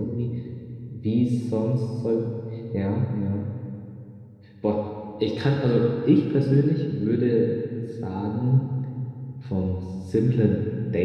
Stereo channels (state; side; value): identical; both; correlation 1.00